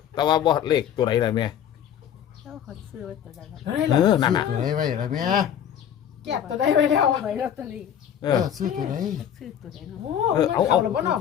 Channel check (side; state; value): right; quieter; 9.5 dB